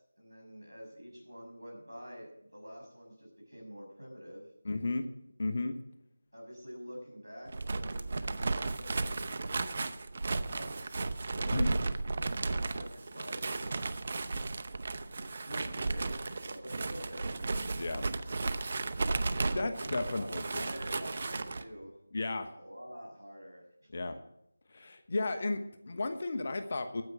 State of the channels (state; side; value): inverted; both; correlation -0.94